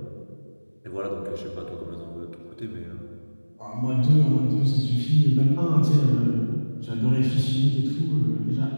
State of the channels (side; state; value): both; inverted; correlation -1.00